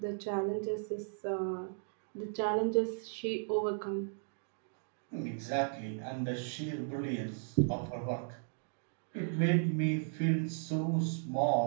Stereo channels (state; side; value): silent; left; digital silence